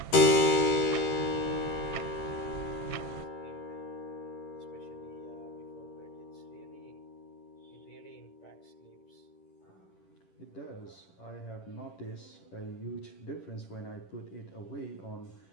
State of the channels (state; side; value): late; right; 11 ms